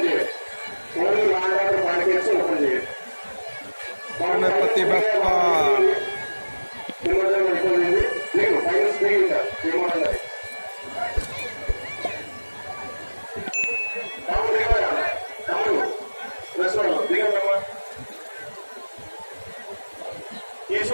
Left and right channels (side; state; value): both; inverted; correlation -1.00